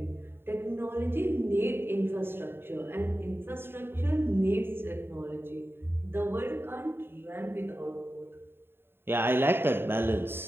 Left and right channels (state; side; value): late; left; 0.11 ms